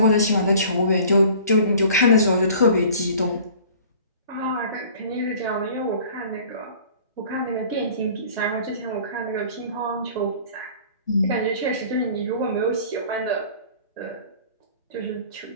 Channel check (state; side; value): inverted; both; correlation -0.48